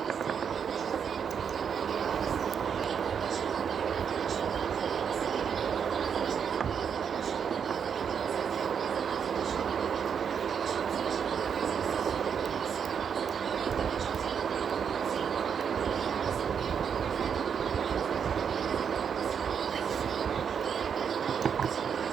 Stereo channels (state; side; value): quieter; left; 7.2 dB